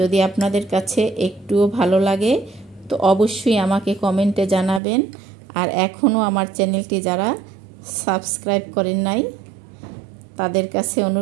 আপনাদের কাছে একটুও ভালো লাগে তো অবশ্যই আমাকে কমেন্টে জানাবেন। আর এখনও আমার চ্যানেলটি যারা সাবস্ক্রাইব করেন নাই তাদের কাছে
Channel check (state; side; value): drops out; left; at 4.8 s